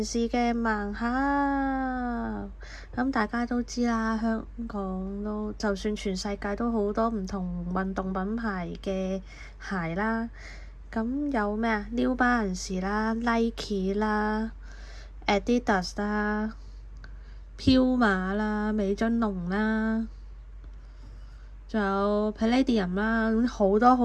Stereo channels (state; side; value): identical; both; correlation 1.00